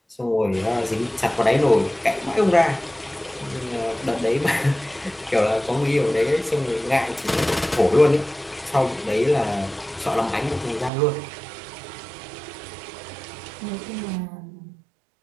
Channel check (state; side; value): drops out; left; at 10.9 s